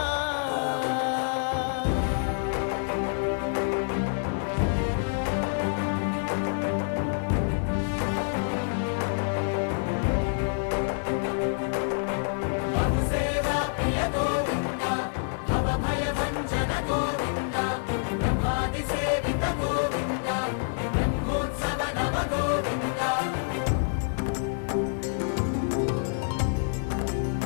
సేవా ప్రియ గోవింద భవ భయ భంజన గోవింద బ్రహ్మాది సేవిత గోవింద బ్రహ్మోత్సవ నవ గోవింద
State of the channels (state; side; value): silent; right; 60 dB below the other